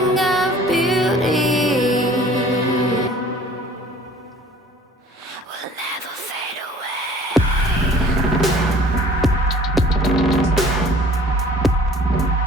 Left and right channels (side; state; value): both; normal; correlation 0.51